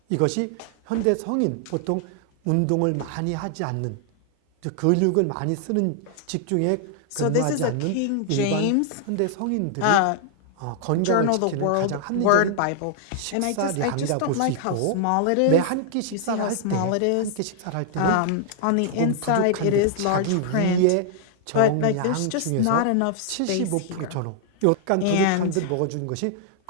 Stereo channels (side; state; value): both; different; correlation -0.01